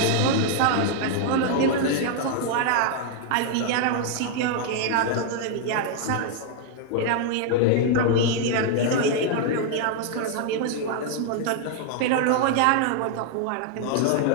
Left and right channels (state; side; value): different; both; correlation 0.00